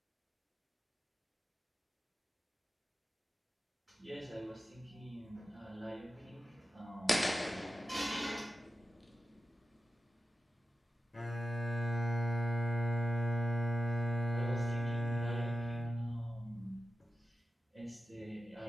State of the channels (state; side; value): normal; both; correlation 0.93